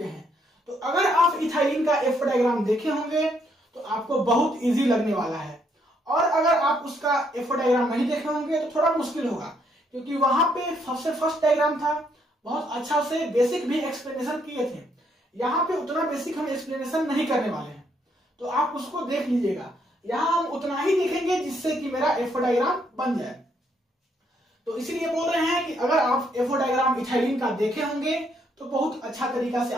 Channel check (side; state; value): both; normal; correlation 0.72